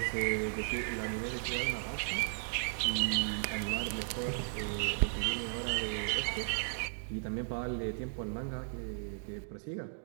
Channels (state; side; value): silent; left; digital silence